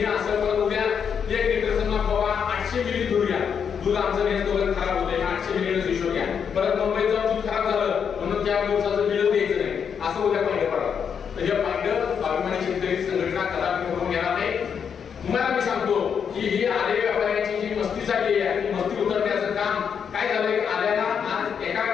असं पण उद्या 1 लिटर समजा बाबा 800 मिली दूध घ्या दूध आमचं नेत वगैरे खराब होते 800 मिली हिशोब घ्या परत मुंबईत जाऊन दूध खराब झालं म्हणून त्या दिवसाचं बिल द्यायचं नाही असं उद्या पाहिजे पडा. तर हे पाहिजे अभिमानी शेतकरी संघटना कदापि करून घेणार नाही. तुम्हाला मी सांगतो की ही आले व्यापाऱ्यांची जी मस्ती झाली आहे ती मस्ती उतरण्याचं काम काय झालंय आल्याला आज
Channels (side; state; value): right; quieter; 7.2 dB